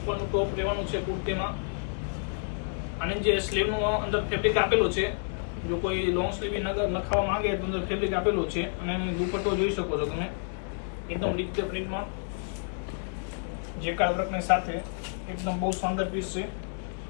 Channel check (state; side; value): silent; right; digital silence